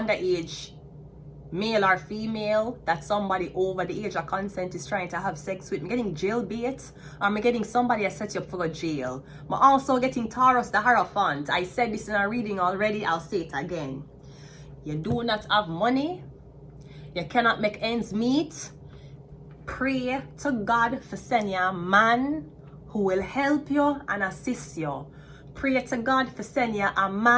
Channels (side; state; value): both; identical; correlation 1.00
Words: underage male or female that somebody over the age of consent is trying to have sex with. I'm getting jailbait, or I'm getting somebody that set you up for a jail. I'm also getting Taurus the Hierophant. I said this in a reading already, I'll say it again. You do not have money, you cannot make ends meet. Pray to God for sending you a man who will help you and assist you. Pray to God for sending you a